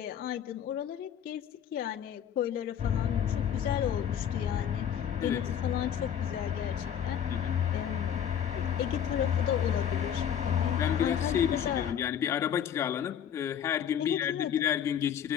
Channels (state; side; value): quieter; right; 9.1 dB